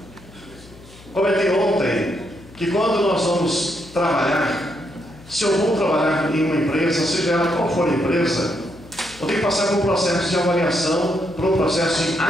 comentei ontem, que quando nós vamos trabalhar, se eu vou trabalhar em uma empresa, seja ela qual for a empresa, eu tenho que passar por um processo de avaliação, por um processo de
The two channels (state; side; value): noise; left; hum, 22 dB below the sound